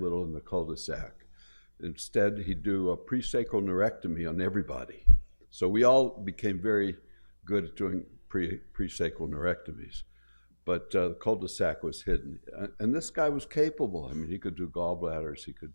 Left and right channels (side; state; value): both; inverted; correlation -1.00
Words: in the cul-de-sac. Instead, he'd do a presacral neurectomy on everybody. So we all became very good at doing presacral neurectomies. But the cul-de-sac was hidden. And this guy was capable. I mean, he could do gallbladders, he